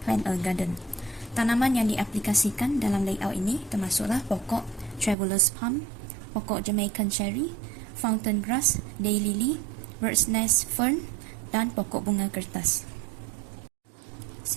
a Garden. Tanaman yang diaplikasikan dalam layout ini termasuklah pokok Traveller's Palm, pokok Jamaican Cherry, Fountain Grass, Daylily, Bird's Nest Fern dan pokok bunga kertas.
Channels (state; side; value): drops out; left; at 5.2 s